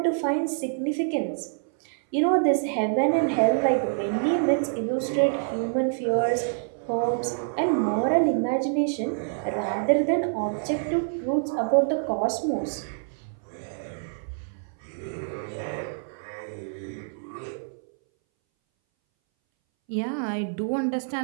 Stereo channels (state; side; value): silent; left; 60 dB below the other